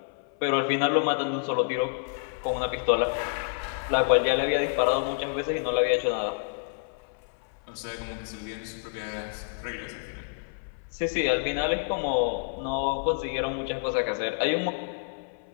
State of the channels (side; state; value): right; silent; 59 dB below the other